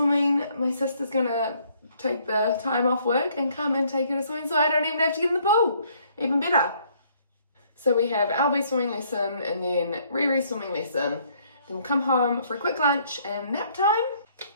my sister's gonna take the time off work and come and take her to swimming, so I don't even have to get in the pool. Even better. So we have Albie swimming lesson and then Riri swimming lesson. Then we'll come home for a quick lunch and nap time.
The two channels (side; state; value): both; inverted; correlation -0.65